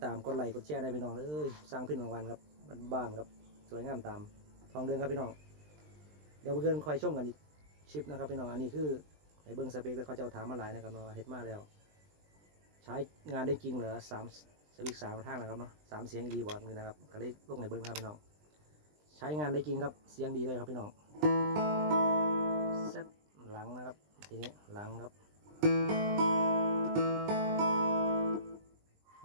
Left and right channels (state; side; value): late; left; 20 ms